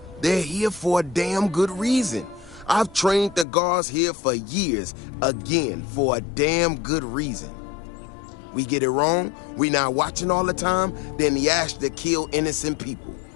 they're here for a damn good reason. I've trained the guards here for years, again, for a damn good reason. We get it wrong, we not watching all the time, then the Ashta kill innocent people.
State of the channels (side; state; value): right; drops out; at 3.5 s